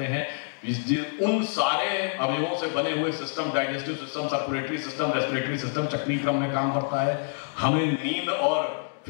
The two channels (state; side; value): silent; right; digital silence